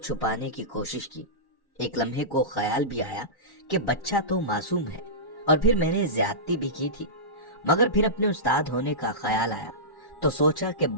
کی کوشش کی۔ ایک لمحے کو خیال بھی آیا کہ بچہ تو معصوم ہے، اور پھر میں نے زیادتی بھی کی تھی، مگر پھر اپنے استاد ہونے کا خیال آیا تو سوچا کہ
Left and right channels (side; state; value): right; late; 1.1 ms